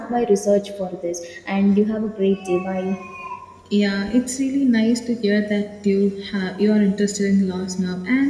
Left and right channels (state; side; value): identical; both; correlation 1.00